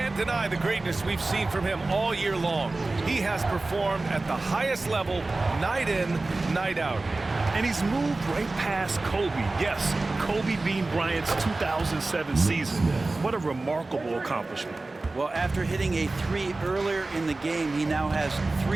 deny the greatness we've seen from him all year long. He has performed at the highest level, night in, night out. And he's moved right past Kobe. Yes, Kobe Bean Bryant's 2007 season. What a remarkable accomplishment. Well, after hitting a 3 earlier in the game, he now has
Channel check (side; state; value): left; quieter; 3.2 dB